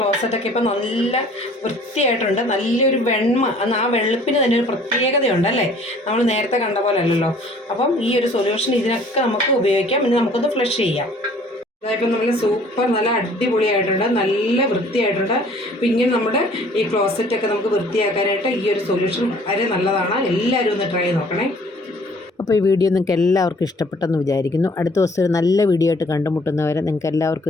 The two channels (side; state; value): both; normal; correlation 0.54